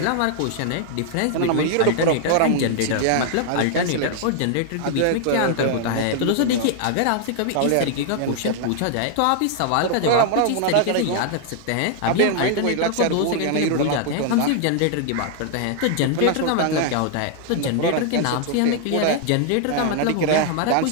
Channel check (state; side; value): different; both; correlation 0.00